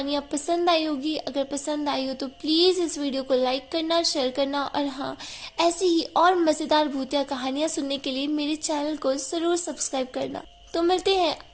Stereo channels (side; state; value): both; identical; correlation 1.00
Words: पसंद आई होगी। अगर पसंद आई हो तो प्लीज इस वीडियो को लाइक करना, शेयर करना और हाँ, ऐसी ही और मजेदार भूतिया कहानियाँ सुनने के लिए मेरे चैनल को जरूर सब्सक्राइब करना। तो मिलते हैं